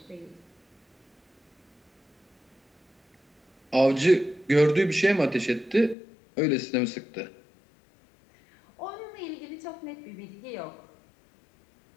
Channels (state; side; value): drops out; right; at 6.0 s